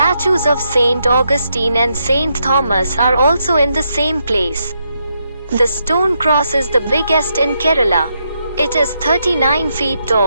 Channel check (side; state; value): both; inverted; correlation -0.80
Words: of Saint Augustine and Saint Thomas are also in the same place. The stone cross is the biggest in Kerala. It is 39 feet